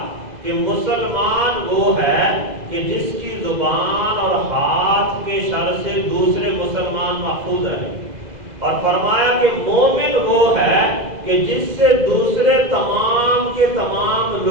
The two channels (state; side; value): late; left; 2.0 ms